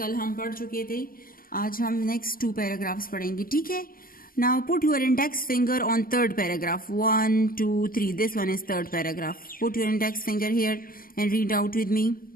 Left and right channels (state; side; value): late; right; 0.42 ms